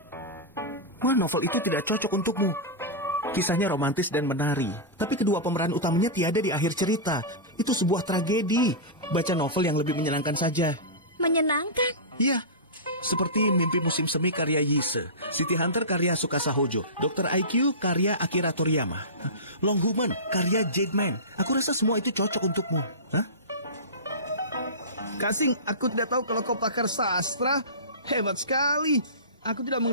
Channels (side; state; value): both; normal; correlation -0.20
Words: Wah, novel itu tidak cocok untukmu. Kisahnya romantis dan menari, tapi kedua pemeran utamanya tiada di akhir cerita. Itu sebuah tragedi. Baca novel yang lebih menyenangkan saja. Menyenangkan? Iya, seperti Mimpi Musim Semi karya Yise, City Hunter karya Tsukasa Hojo, Dr. IQ karya Akira Toriyama, Long Human karya Jade Man. Aku rasa semua itu cocok untukmu. Hah? Kasing, aku tidak tahu kalau kau pakar sastra. Hebat sekali. Aku tidak